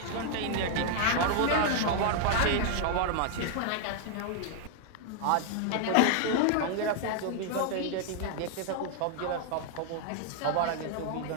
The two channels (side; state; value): both; different; correlation 0.00